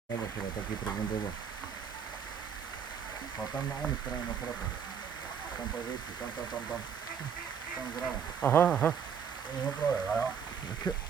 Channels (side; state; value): left; quieter; 7.3 dB